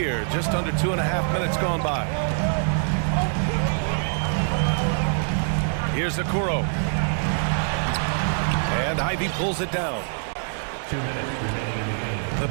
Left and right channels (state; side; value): silent; left; 62 dB below the other